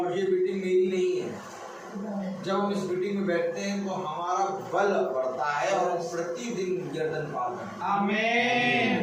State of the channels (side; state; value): both; identical; correlation 1.00